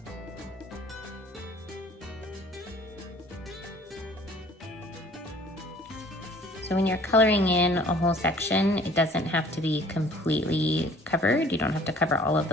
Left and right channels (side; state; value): both; normal; correlation 0.53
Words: So when you're coloring in a whole section, it doesn't have to be completely covered. You don't have to cover all of